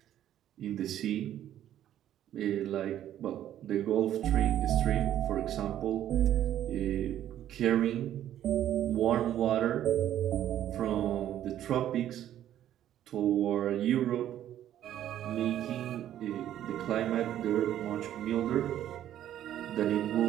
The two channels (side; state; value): left; quieter; 11.5 dB